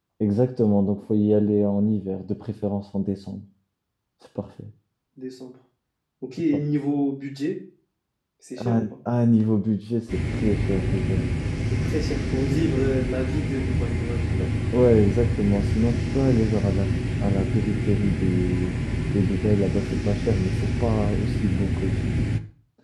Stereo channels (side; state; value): both; identical; correlation 1.00